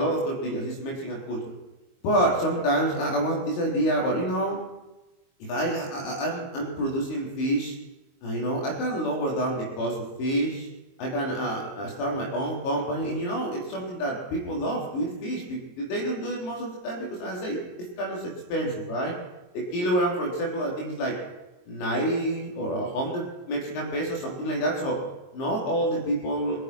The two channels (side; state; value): right; late; 22 ms